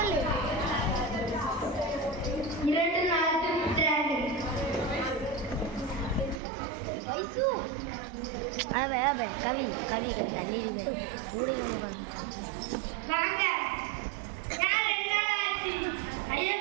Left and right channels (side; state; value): left; drops out; at 6.4 s